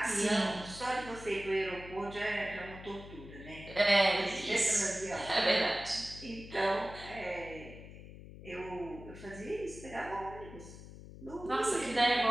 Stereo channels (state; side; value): noise; left; hum, 15 dB below the sound